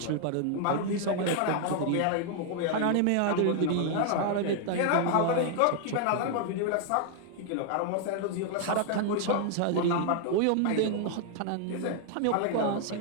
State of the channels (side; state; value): both; different; correlation 0.00